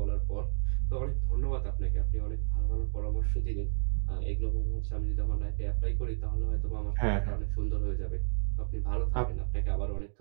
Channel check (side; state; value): left; silent; digital silence